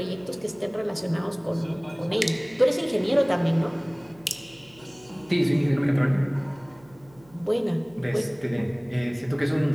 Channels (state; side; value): noise; right; hum, 27 dB below the sound